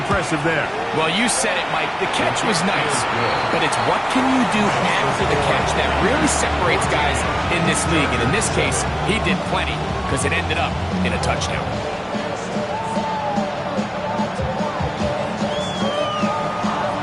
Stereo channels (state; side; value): identical; both; correlation 1.00